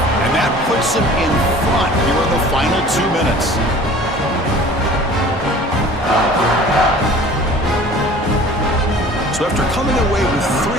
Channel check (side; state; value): both; normal; correlation 0.46